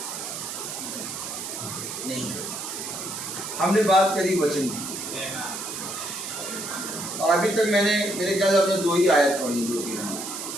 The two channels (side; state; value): right; noise; hiss, 6 dB below the sound